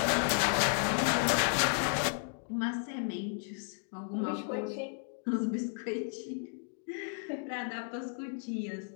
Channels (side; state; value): right; silent; 55 dB below the other